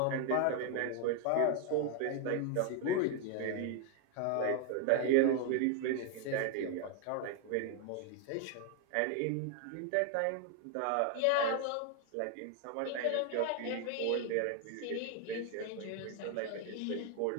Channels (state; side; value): different; both; correlation 0.01